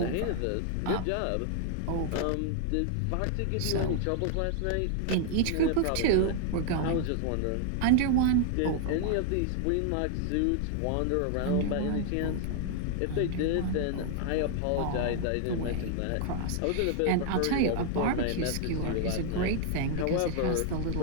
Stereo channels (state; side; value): different; both; correlation 0.00